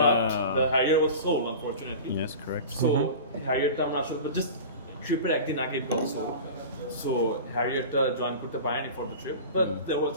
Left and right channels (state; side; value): inverted; both; correlation -0.34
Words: the Harrier was sold unfortunately. Yes, correct. So Harrierটা আমরা আসলে just tripper একদিন আগে it got sold. So Harrierটা join করতে পারেনি for the trip. But there was